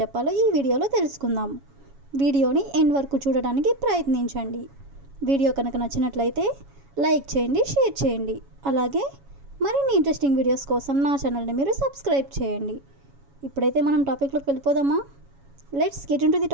చెప్పాలో ఈ వీడియోలో తెలుసుకుందాం. వీడియోని ఎండ్ వరకు చూడడానికి ప్రయత్నించండి. వీడియో కనుక నచ్చినట్లయితే లైక్ చేయండి, షేర్ చేయండి. అలాగే మరిన్ని ఇంట్రెస్టింగ్ వీడియోస్ కోసం నా ఛానల్ని మీరు సబ్స్క్రైబ్ చేయండి. ఇప్పుడైతే మనం టాపిక్లోకి వెళ్ళిపోదామా? Let's get into the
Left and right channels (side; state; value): left; late; 7.2 ms